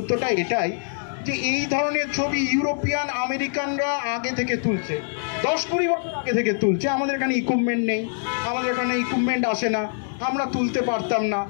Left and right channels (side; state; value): right; silent; digital silence